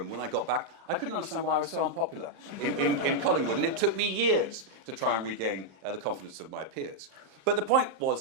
When I got back, I couldn't understand why I was so unpopular in Collingwood. And it took me years to try and regain the confidence of my peers. But the point was,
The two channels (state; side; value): late; left; 35 ms